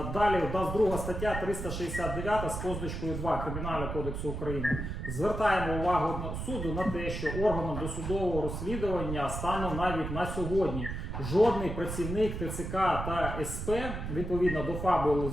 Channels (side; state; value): right; noise; rumble, 5 dB below the sound